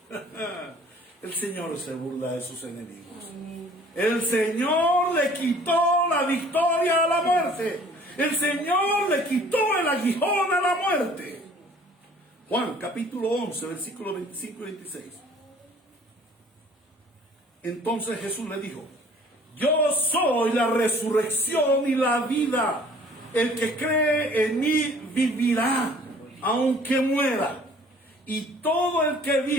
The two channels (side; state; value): both; normal; correlation 0.53